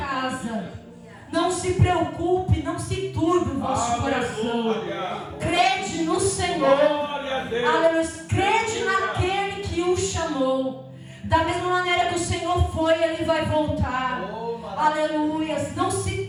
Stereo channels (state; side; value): identical; both; correlation 1.00